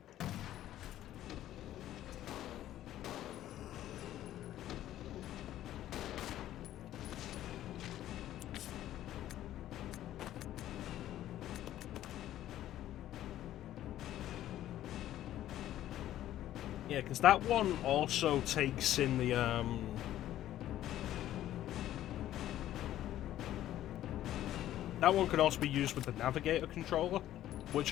Yeah, because that one also takes in the, that one could also be used with the Navigator controller, which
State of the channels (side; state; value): right; quieter; 12.9 dB